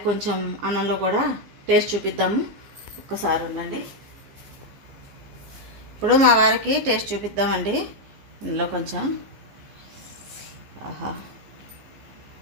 కొంచెం అన్నంలో కూడా టేస్ట్ చూపిద్దాము. ఒక్కసారి ఉండండి, ఇప్పుడు మా వారికి టేస్ట్ చూపిద్దామండి. ఇందులో కొంచెం ఆహా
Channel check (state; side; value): late; left; 14 ms